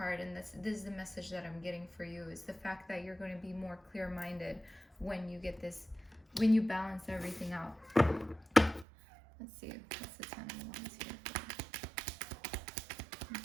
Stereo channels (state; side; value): drops out; left; at 8.8 s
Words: and this is the message that I'm getting for you, is the fact that you're going to be more clear-minded when you get this, when you balance everything out. Let's see, what's the 10 of Wands here for? Let me